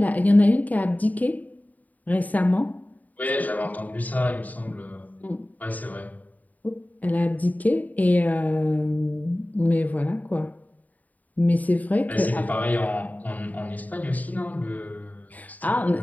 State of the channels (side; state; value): right; late; 0.076 ms